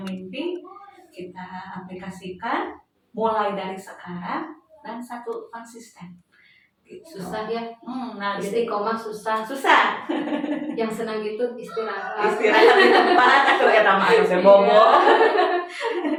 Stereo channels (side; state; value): both; identical; correlation 1.00